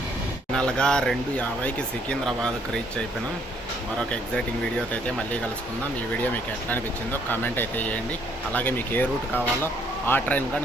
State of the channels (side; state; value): both; normal; correlation 0.67